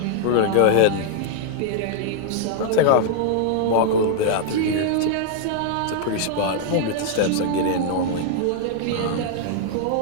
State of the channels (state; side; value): different; both; correlation 0.00